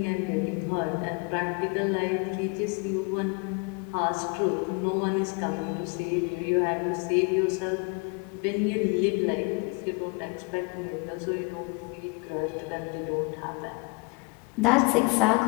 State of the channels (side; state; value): right; quieter; 29.4 dB